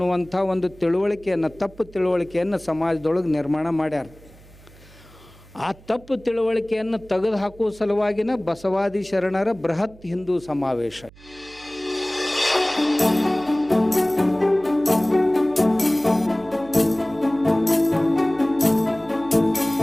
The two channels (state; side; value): noise; right; hum, 23 dB below the sound